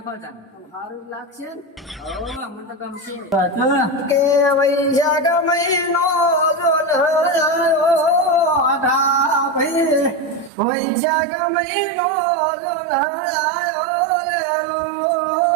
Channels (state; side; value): drops out; left; at 10.5 s